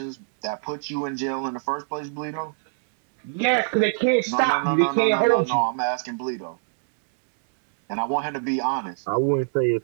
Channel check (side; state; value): left; silent; digital silence